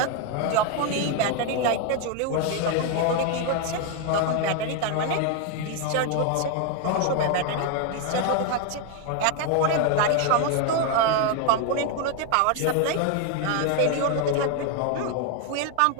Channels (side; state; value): both; different; correlation 0.01